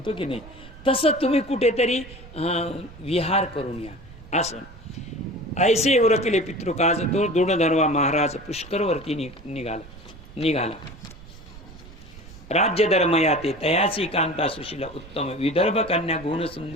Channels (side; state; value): right; noise; rumble, 18 dB below the sound